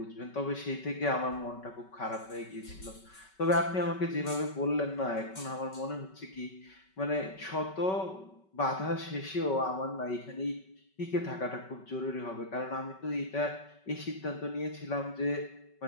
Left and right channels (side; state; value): right; late; 5.3 ms